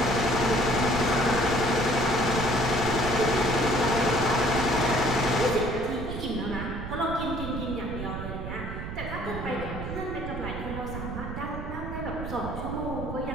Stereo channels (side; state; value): right; noise; rumble, 7 dB below the sound